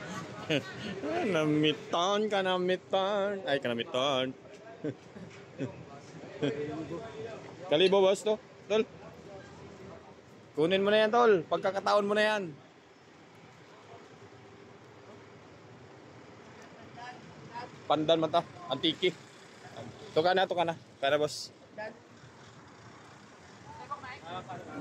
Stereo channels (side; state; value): both; identical; correlation 1.00